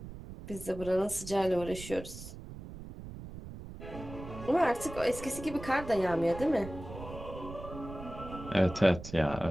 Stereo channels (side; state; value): right; noise; rumble, 12 dB below the sound